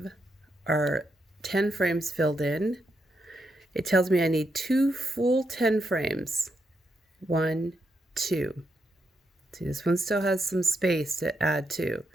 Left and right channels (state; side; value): normal; both; correlation 0.81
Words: our 10 frames filled in. It tells me I need 2 full 10 frames. 1, 2. See, this one still has some space to add to.